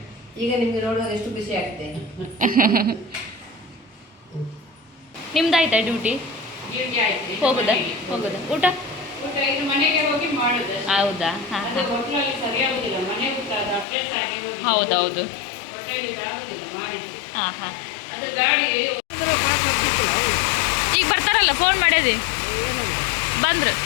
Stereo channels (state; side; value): drops out; right; at 13.9 s